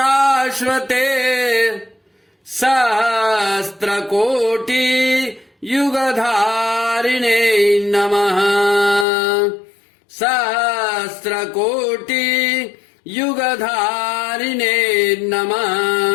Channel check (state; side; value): drops out; right; at 9.1 s